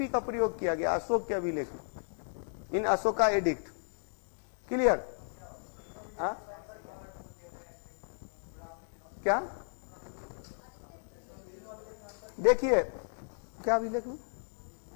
का प्रयोग किया गया अशोक के अभिलेख इन अशोका एडिक्ट। क्लियर? क्या देखिए क्या अभिलेख में,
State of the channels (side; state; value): right; silent; digital silence